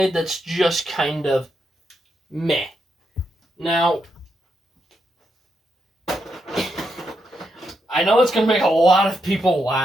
that's just kind of meh. Now, I know it's going to make a lot of people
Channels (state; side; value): normal; both; correlation 0.82